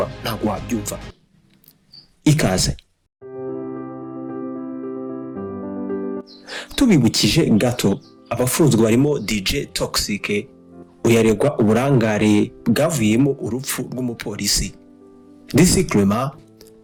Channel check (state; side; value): identical; both; correlation 1.00